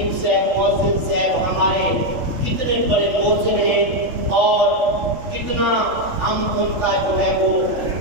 صاحب، مؤذن صاحب ہمارے کتنے بڑے محسن ہیں اور کتنا ہم ان کا جو ہے وہ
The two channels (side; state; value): left; late; 3.4 ms